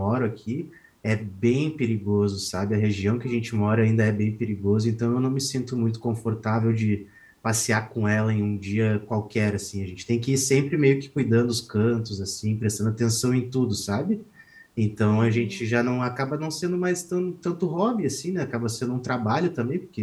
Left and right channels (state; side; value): identical; both; correlation 1.00